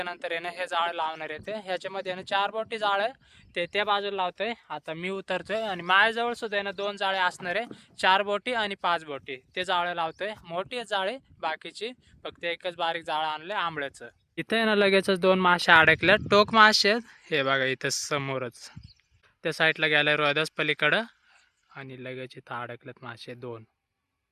आहे ना हे जाळं लावणार येते. ह्याच्यामध्ये ना 4 बोटी जाळं ते त्या बाजूला लावतोय. आता मी उतरतोय आणि माझ्याजवळ सुद्धा आहे ना 2 जाळे असणार आहे, 4 बोटी आणि 5 बोटी. ते जाळं लावतोय. मोठी जाळे बाकीची, फक्त एकच बारीक जाळं आणलंय आंबळ्याचं. इथे आहे ना लगेचच 2 मासे अडकले, टोक मासे आहेत. हे बघा इथं समोरच त्या साईडला गेलाय रोहिदास पलीकडं. आणि लगेच इथं अडकलेत मासे 2.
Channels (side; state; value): both; identical; correlation 1.00